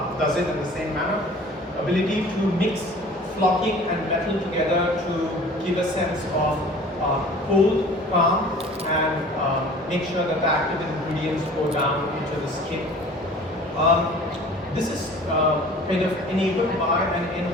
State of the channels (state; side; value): normal; both; correlation 0.46